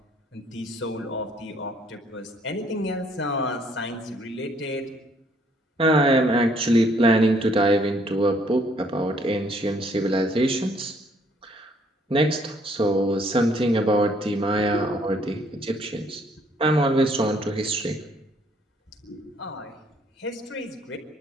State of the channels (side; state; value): both; normal; correlation 0.65